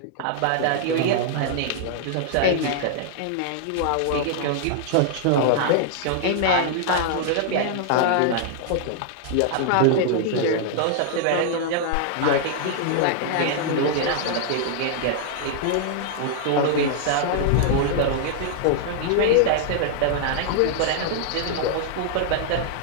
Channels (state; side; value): different; both; correlation -0.01